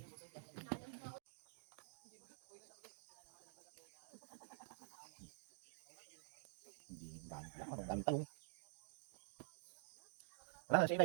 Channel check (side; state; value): left; silent; digital silence